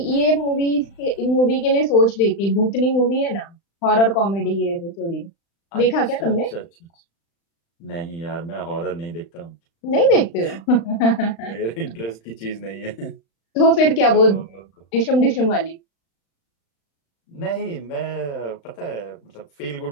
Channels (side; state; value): right; late; 35 ms